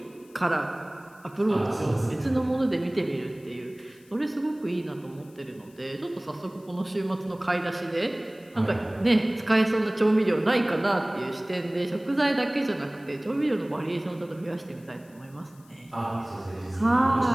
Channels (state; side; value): noise; left; hiss, 28 dB below the sound